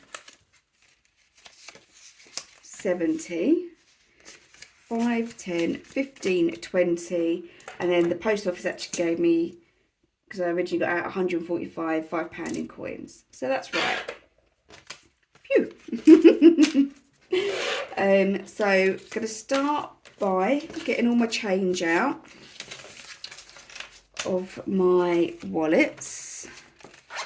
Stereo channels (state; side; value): identical; both; correlation 1.00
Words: 70, 5, 10, 15, 20, and then the post office actually gave me, because I originally got out 145 £5 in coins. So that's right. Phew. So I'm going to start by getting all my change out of my wallets.